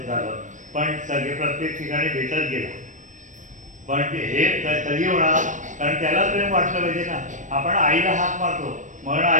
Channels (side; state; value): left; late; 0.37 ms